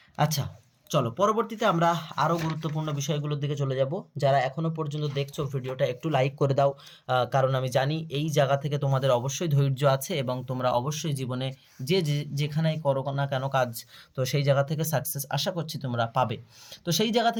আচ্ছা, চলো পরবর্তীতে আমরা আরও গুরুত্বপূর্ণ বিষয়গুলোর দিকে চলে যাব। যারা এখনও পর্যন্ত দেখছো ভিডিওটা একটু লাইক করে দাও, কারণ আমি জানি এই জায়গা থেকে তোমাদের অবশ্যই ধৈর্য আছে এবং তোমরা অবশ্যই জীবনে যেখানেই করো না কেন কাজ, তো সেই জায়গা থেকে সাকসেস আশা করছি তোমরা পাবে। তো সেই জায়গা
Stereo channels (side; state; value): both; identical; correlation 1.00